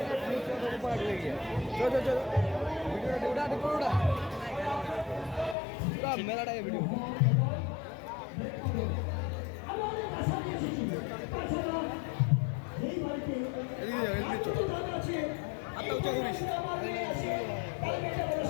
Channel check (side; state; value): right; drops out; at 5.6 s